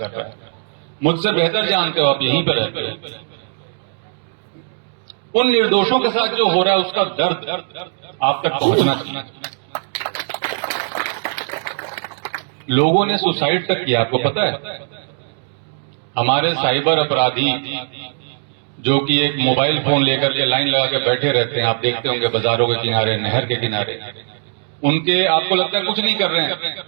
रहा है, मुझसे बेहतर जानते हो, आप यहीं पर रहते हो। उन निर्दोषों के साथ जो हो रहा है उसका दर्द आप तक पहुंचना चाहिए। लोगों ने सुसाइड तक किया, आपको पता है? हमारे साइबर अपराधी जो कि एक मोबाइल फोन लेकर के लाइन लगा के बैठे रहते हैं, आप देखते होंगे बाजारों के किनारे, नहर के किनारे, उनके आपको लगता है कुछ नहीं कर रहे हैं,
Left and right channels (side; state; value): left; silent; digital silence